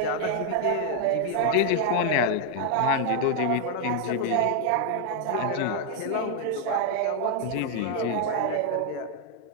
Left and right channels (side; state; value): both; different; correlation 0.00